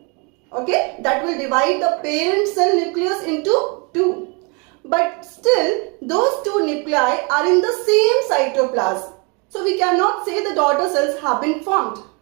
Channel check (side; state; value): left; quieter; 32.2 dB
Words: Okay, that will divide the parent cell nucleus into 2. But still, those 2 nuclei are in the same cytoplasm. So, we cannot say the daughter cells have been formed.